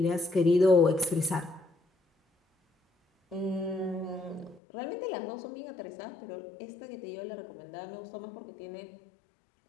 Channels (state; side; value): drops out; right; at 4.6 s